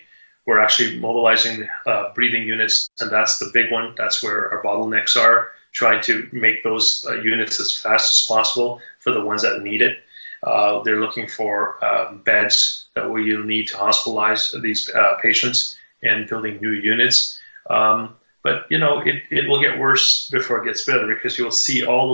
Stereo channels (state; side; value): inverted; both; correlation -1.00